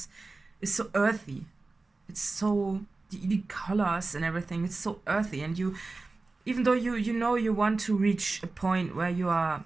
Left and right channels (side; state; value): left; quieter; 3.6 dB